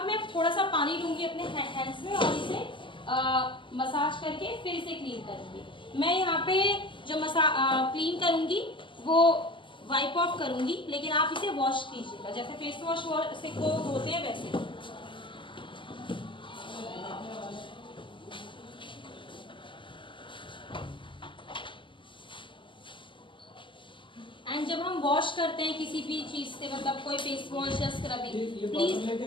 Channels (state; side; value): late; right; 0.24 ms